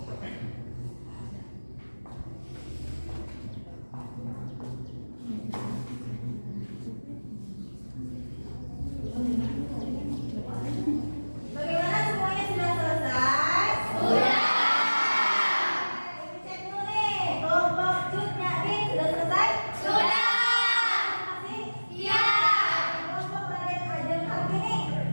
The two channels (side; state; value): both; inverted; correlation -1.00